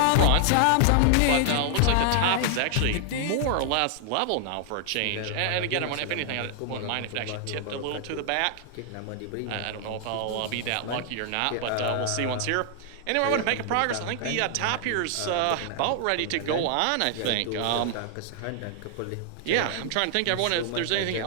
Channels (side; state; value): both; different; correlation 0.00